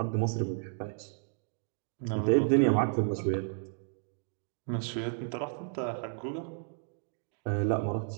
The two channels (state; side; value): silent; left; digital silence